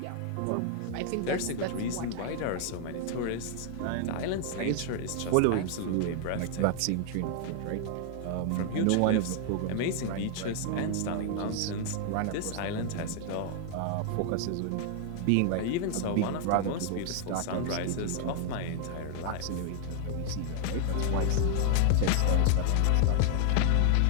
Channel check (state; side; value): different; both; correlation 0.00